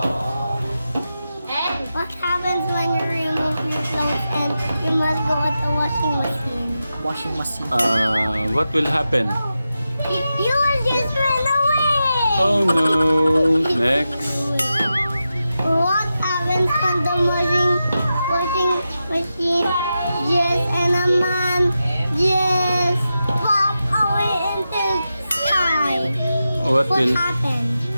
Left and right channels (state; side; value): inverted; both; correlation -0.90